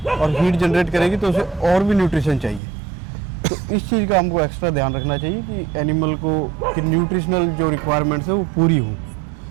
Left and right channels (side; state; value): left; drops out; at 2.6 s